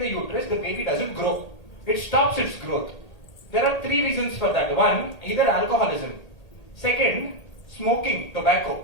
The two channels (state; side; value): late; right; 1.8 ms